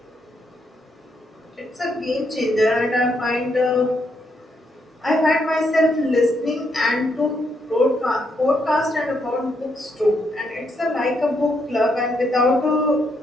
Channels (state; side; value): normal; both; correlation 0.77